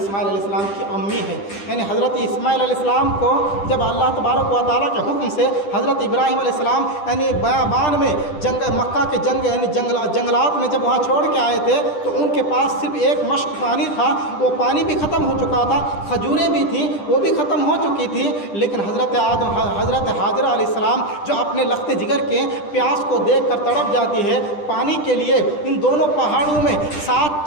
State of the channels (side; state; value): right; late; 10 ms